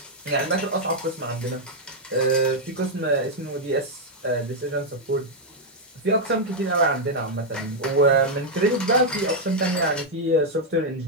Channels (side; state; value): both; normal; correlation -0.02